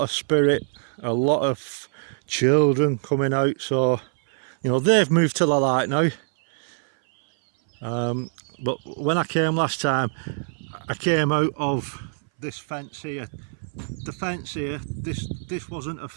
of spirit, a lot of children coming out, so you know they've moved to the light now. But when I came last time, I came out of this fence here. The fence here, this wasn't a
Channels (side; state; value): left; silent; 61 dB below the other